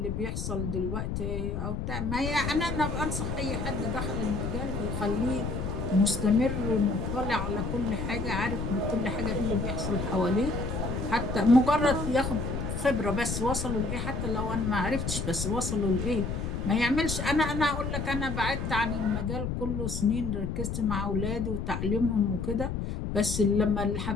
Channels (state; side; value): noise; left; rumble, 3 dB below the sound